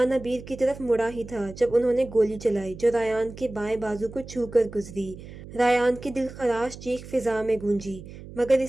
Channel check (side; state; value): right; noise; hum, 15 dB below the sound